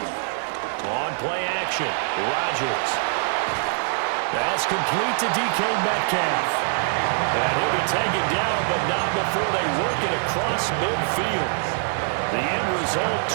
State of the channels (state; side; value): silent; left; 63 dB below the other